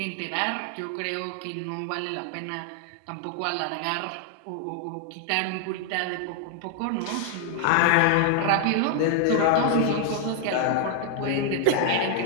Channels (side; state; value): both; different; correlation 0.00